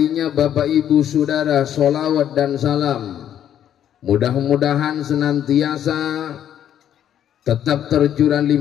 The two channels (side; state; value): right; quieter; 10.2 dB